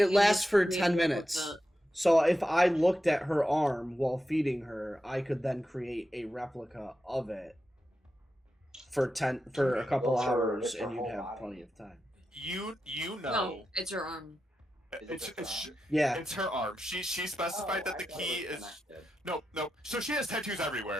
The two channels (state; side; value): normal; both; correlation 0.89